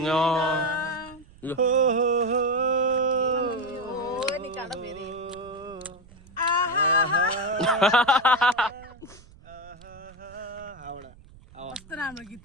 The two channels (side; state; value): right; noise; rumble, 23 dB below the sound